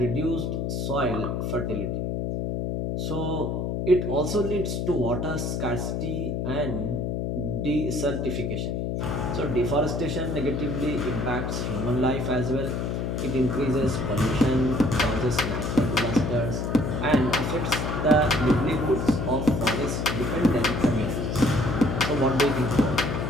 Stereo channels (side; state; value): left; noise; hum, 1 dB below the sound